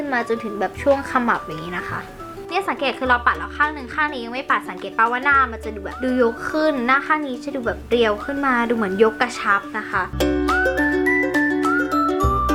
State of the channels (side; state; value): both; identical; correlation 1.00